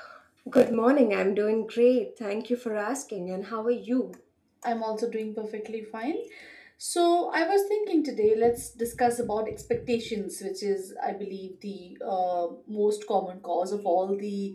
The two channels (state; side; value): identical; both; correlation 1.00